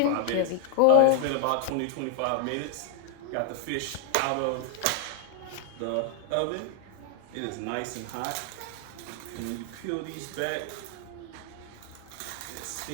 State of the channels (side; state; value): both; different; correlation 0.00